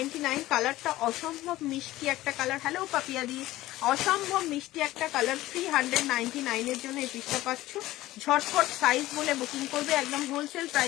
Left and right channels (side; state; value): right; quieter; 16.5 dB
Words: কালারটা অসম্ভব মিষ্টি একটা কালার। হ্যালো পাপিয়া দি, অসম্ভব মিষ্টি একটা কালার। 399 এর জন্য এই পিসটা পাচ্ছ। ঝটপট সাইজ বলে বুকিং করবে, একদম হোলসেল